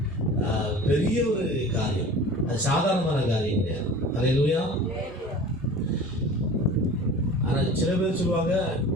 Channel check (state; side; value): normal; both; correlation 0.40